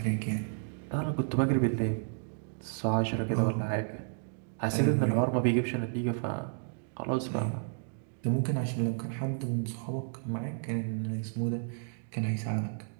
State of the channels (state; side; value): silent; left; digital silence